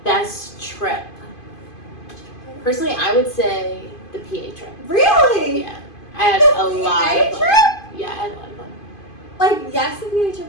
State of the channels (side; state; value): right; late; 2.5 ms